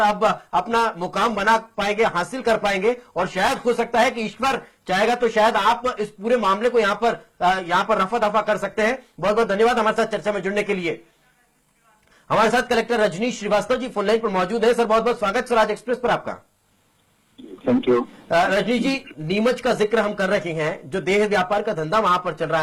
आप अपना मुकाम बना पाएंगे, हासिल कर पाएंगे। और शायद हो सकता है कि ईश्वर चाहेगा तो शायद आप इस पूरे मामले को यहां पर रफा दफा कर सकते हैं। बहुत बहुत धन्यवाद हमारे साथ चर्चा में जुड़ने के लिए। हमारे साथ collector Rajneesh Srivastava ji phone line पर मौजूद है। सर, बहुत बहुत स्वागत स्वराज एक्सप्रेस पर आपका। Thank you. रजनीश जी, नीमच का जिक्र हम कर रहे हैं, जो देह व्यापार का धंधा वहां पर चल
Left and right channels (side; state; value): both; identical; correlation 1.00